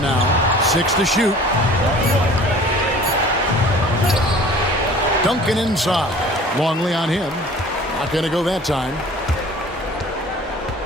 now. 6 to shoot. Duncan inside. Longley on him. Not going to go that time.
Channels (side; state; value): both; normal; correlation 0.46